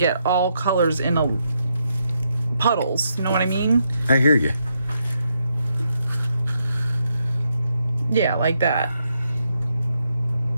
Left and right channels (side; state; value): both; inverted; correlation -0.80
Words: all colors in a puddles. You know what I mean? I hear you. Yeah, like that.